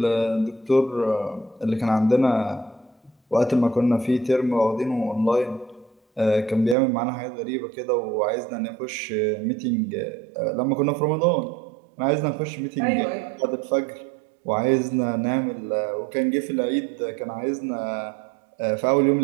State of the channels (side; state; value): left; drops out; at 6.8 s